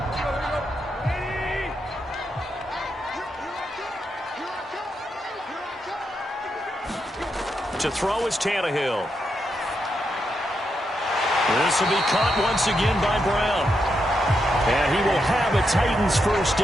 To throw is Tannehill. This will be caught once again by Brown. And he will have a Titans first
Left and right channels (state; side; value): normal; both; correlation 0.83